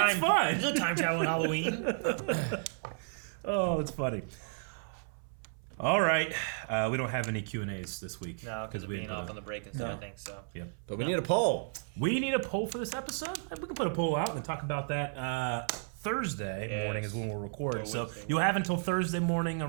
Fun. There's no time travel on Halloween. Oh, it's funny. All right, we don't have any Q&As this week. No, because of being off on the break and stuff. I think so. Yeah, but we need a poll. We need a poll for this episode. We can put a poll out and talk about that Thursday morning is when we'll record. So you'll have until Thursday morning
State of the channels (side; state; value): left; silent; 56 dB below the other